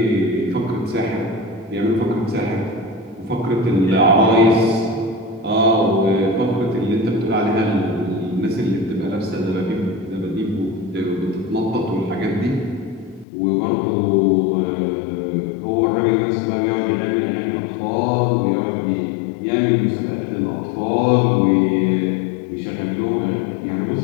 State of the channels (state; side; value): drops out; right; at 13.2 s